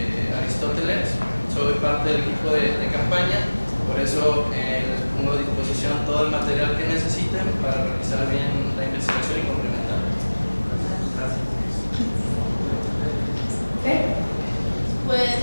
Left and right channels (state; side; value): inverted; both; correlation -1.00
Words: Aristóteles, soy parte del equipo de campaña, por eso les pongo a disposición todo el material que necesiten para realizar bien la investigación y complementar. Gracias.